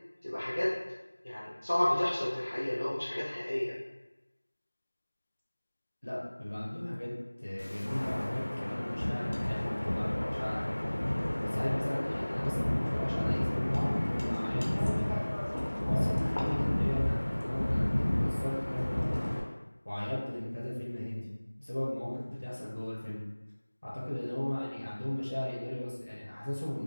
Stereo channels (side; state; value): both; inverted; correlation -1.00